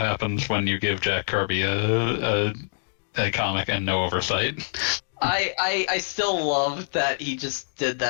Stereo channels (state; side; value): silent; right; digital silence